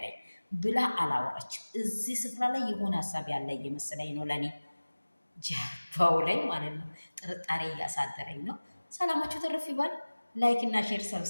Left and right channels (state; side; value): inverted; both; correlation -1.00